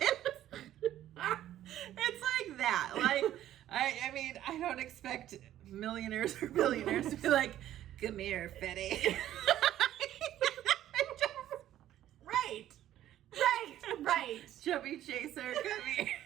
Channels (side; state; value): left; quieter; 12.5 dB